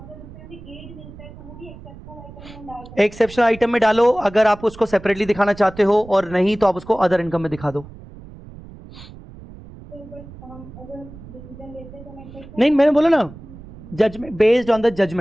उसमें भी एड मिलता है तो वो भी एक्सेप्शनल आइटम में डाल सकते हैं। एक्सेप्शनल आइटम में डालो, अगर आप उसको सेपरेटली दिखाना चाहते हो, और नहीं तो आप उसको अदर इनकम में दिखा दो। तो बट हम अगर डिसीजन लेते हैं तो मैं नहीं, मैंने बोला ना, judgement based on the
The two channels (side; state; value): right; noise; rumble, 17 dB below the sound